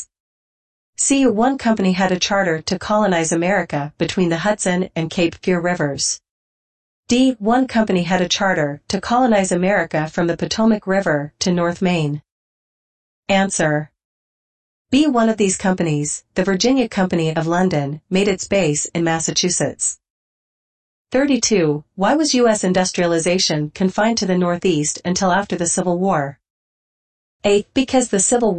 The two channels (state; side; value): identical; both; correlation 1.00